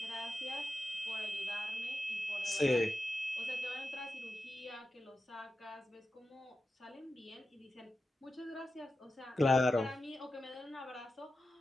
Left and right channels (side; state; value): both; normal; correlation 0.91